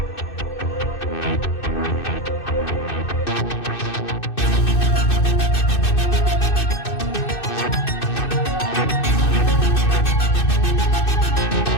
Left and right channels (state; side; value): late; right; 2.6 ms